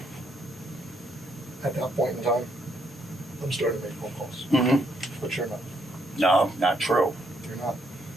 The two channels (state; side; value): normal; both; correlation 0.73